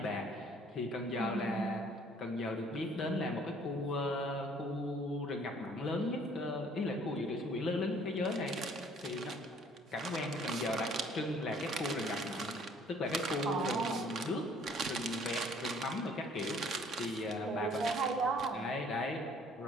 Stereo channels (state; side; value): normal; both; correlation 0.58